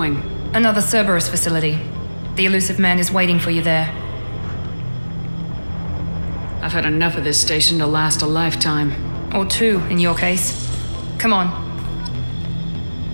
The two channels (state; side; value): inverted; both; correlation -1.00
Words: Another Cerberus facility. The elusive man is waiting for you there. I've had enough of this station to last a lifetime. Or two, in your case. Come on.